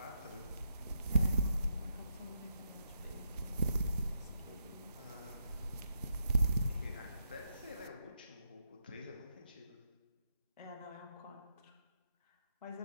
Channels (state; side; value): inverted; both; correlation -0.81